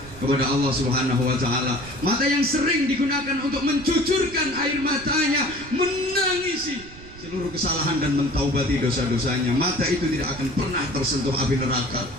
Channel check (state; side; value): noise; right; rumble, 17 dB below the sound